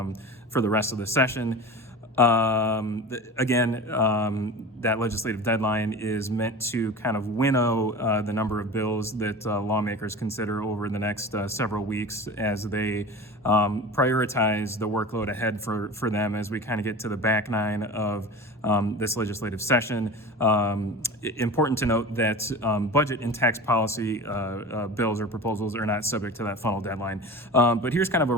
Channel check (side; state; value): both; normal; correlation 0.33